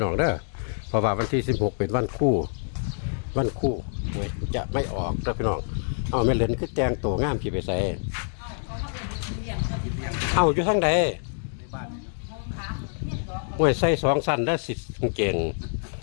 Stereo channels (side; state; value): right; silent; digital silence